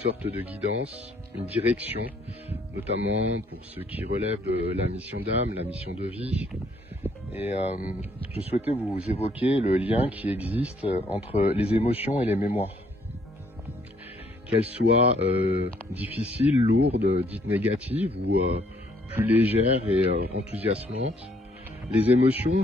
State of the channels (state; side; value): normal; both; correlation 0.67